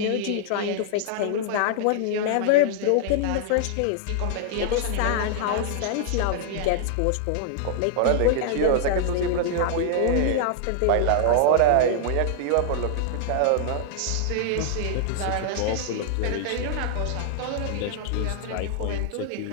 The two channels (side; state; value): both; different; correlation -0.01